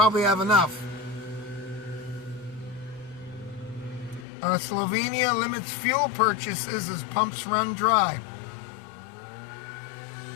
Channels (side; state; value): right; drops out; at 4.2 s